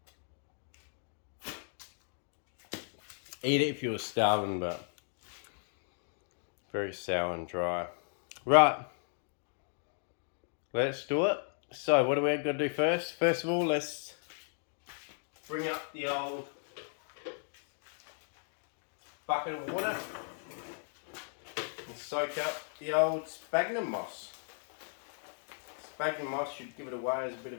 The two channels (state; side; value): silent; right; 54 dB below the other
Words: Eat it if you were starving, but very sour and dry. Right. Let's do it. So what do we got to do first? First of all, let's bring up the old bucket of water. Soak up the old sphagnum moss. Sphagnum moss should give it away as a bit of